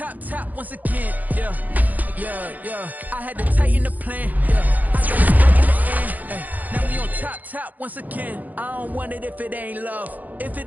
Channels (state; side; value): late; left; 0.081 ms